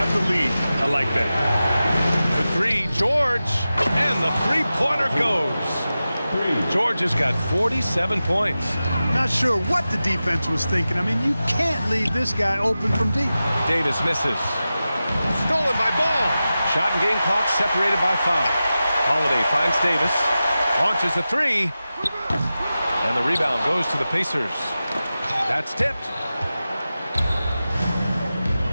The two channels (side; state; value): both; inverted; correlation -0.94